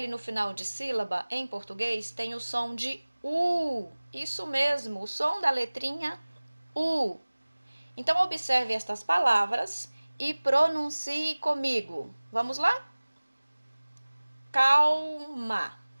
no final de sílaba, em português, tem o som de U. Isso mesmo, o som da letrinha U. Então, observe estas palavras e pronuncie comigo. Vamos lá? Calma,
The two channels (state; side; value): inverted; both; correlation -1.00